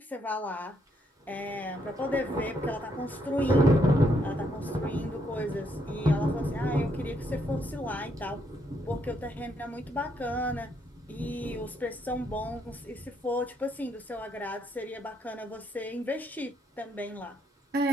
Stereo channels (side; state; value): both; normal; correlation 0.74